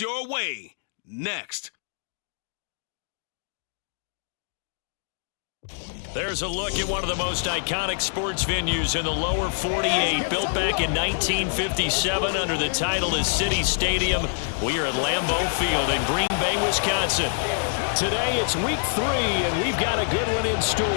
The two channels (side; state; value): right; silent; digital silence